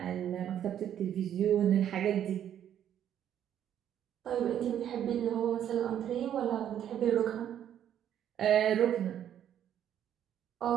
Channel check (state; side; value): quieter; left; 10.1 dB